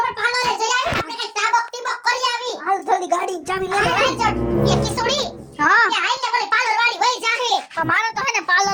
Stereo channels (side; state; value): both; identical; correlation 1.00